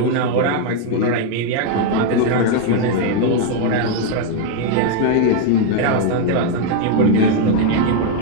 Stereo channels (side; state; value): both; different; correlation 0.00